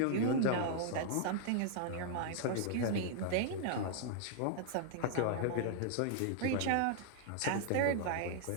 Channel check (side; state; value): both; different; correlation -0.01